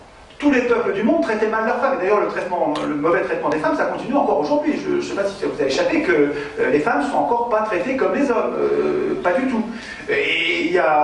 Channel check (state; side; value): identical; both; correlation 1.00